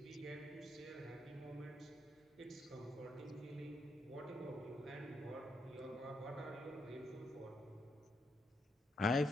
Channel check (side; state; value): both; normal; correlation 0.79